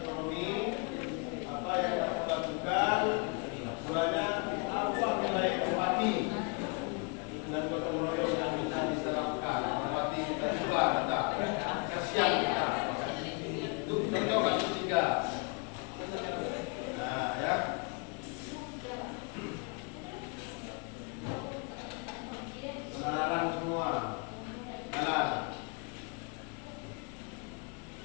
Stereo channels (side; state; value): right; quieter; 34.0 dB